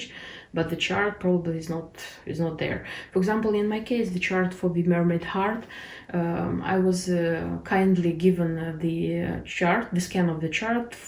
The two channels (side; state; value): both; identical; correlation 1.00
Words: but the chart probably is not there. For example, in my case, the chart for the Mermaid Heart, I was kindly given the chart, the scan of the chart